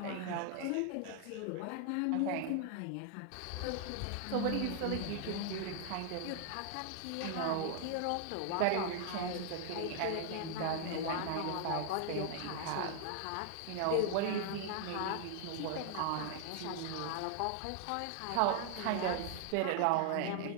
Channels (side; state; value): both; different; correlation 0.00